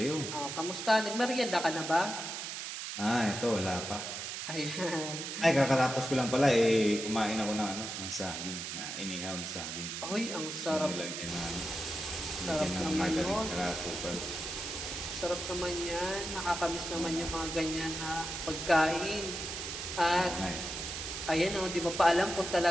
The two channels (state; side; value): noise; right; hiss, 6 dB below the sound